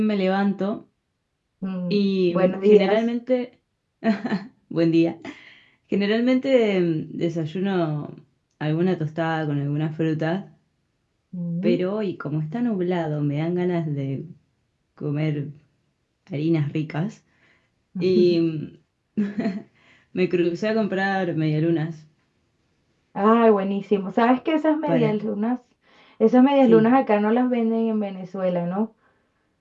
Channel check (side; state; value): both; identical; correlation 1.00